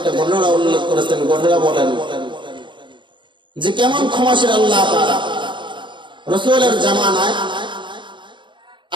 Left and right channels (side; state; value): left; late; 0.23 ms